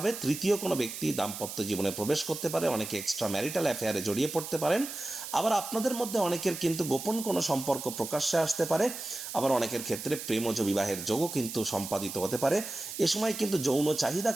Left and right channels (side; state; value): right; noise; hiss, 8 dB below the sound